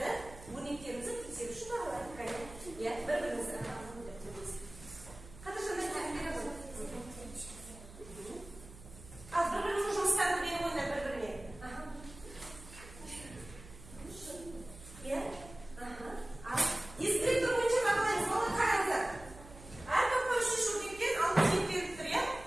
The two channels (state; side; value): noise; right; hum, 17 dB below the sound